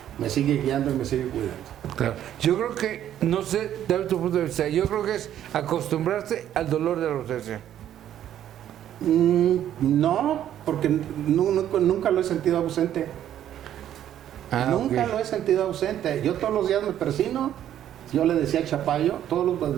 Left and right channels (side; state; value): left; quieter; 11.0 dB